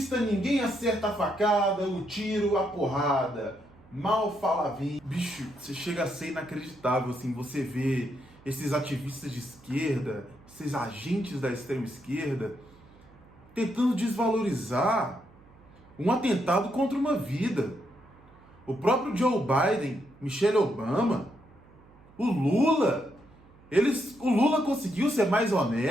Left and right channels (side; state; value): right; noise; hum, 26 dB below the sound